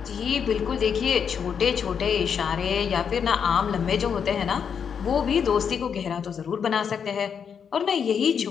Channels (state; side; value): quieter; right; 7.1 dB